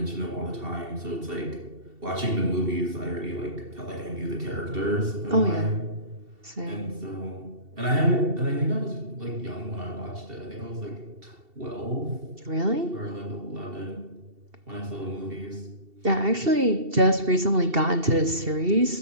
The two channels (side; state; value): left; late; 2.7 ms